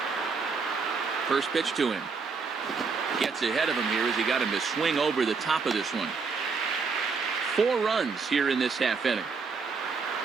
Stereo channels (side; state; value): left; quieter; 4.9 dB